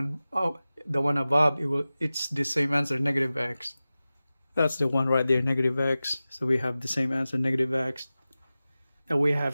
above, it's the same answer, negative x. That's the one right there, negative x. So we have the same answer, negative x. And we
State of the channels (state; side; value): inverted; both; correlation -0.96